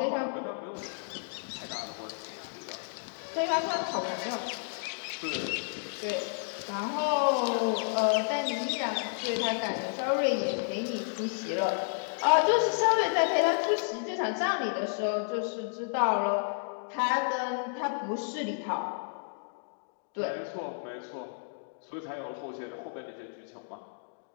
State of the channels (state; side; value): silent; right; digital silence